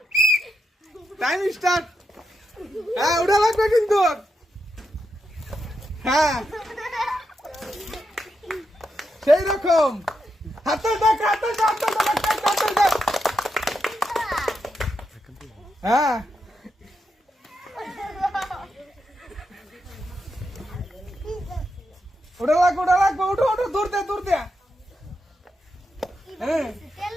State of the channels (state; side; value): normal; both; correlation 0.84